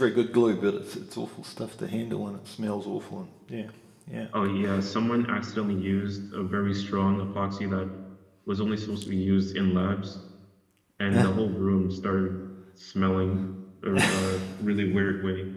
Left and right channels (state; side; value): identical; both; correlation 1.00